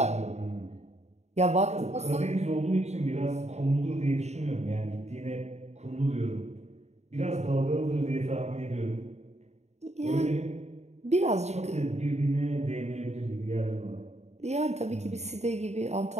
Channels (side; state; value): left; late; 0.32 ms